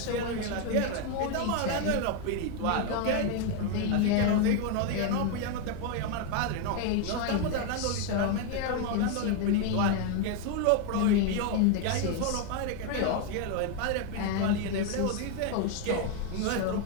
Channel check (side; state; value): both; different; correlation 0.01